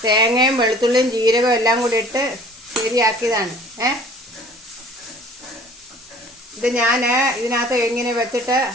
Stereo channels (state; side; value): normal; both; correlation 0.50